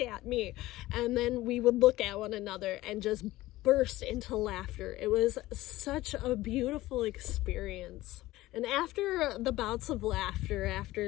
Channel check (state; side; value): quieter; right; 17.2 dB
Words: at me. And then we would look at one another and just burst into laughter. It was such a beautiful experience. And after the bouts of laughter,